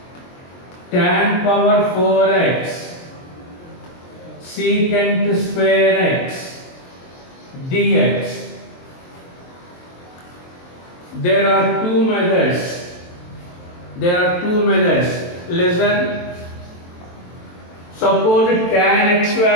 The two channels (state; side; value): late; right; 23 ms